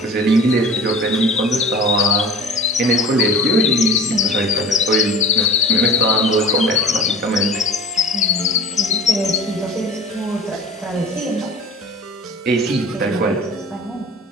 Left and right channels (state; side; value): normal; both; correlation 0.39